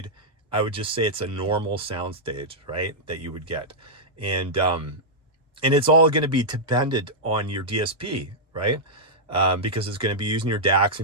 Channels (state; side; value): normal; both; correlation -0.08